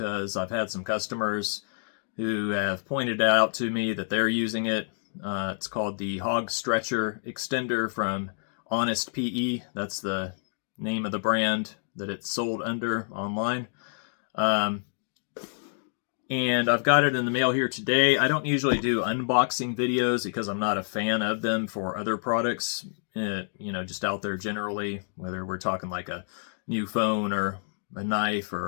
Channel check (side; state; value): right; silent; digital silence